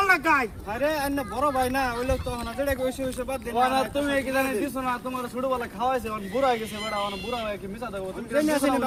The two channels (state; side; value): identical; both; correlation 1.00